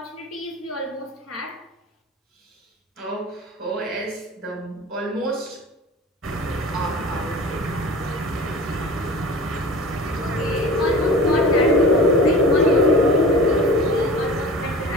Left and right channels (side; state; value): both; normal; correlation 0.38